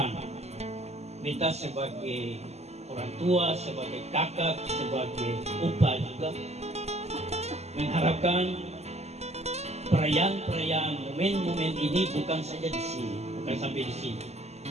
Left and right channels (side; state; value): left; late; 0.31 ms